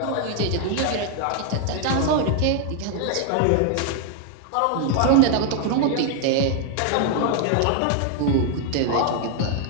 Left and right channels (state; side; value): different; both; correlation 0.00